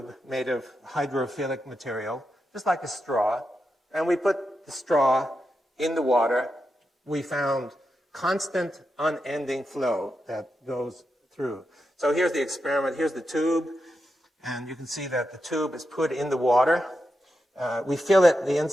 made of hydrophilic material, just like a straw, and we put the straw in the water, we found constant, unending flow that goes through. So here's the experiment. Here's the tube, and you can see that the tube is put in the water. We fill it the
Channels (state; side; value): normal; both; correlation 0.87